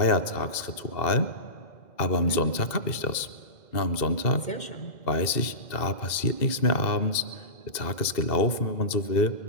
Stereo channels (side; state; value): right; late; 2.0 ms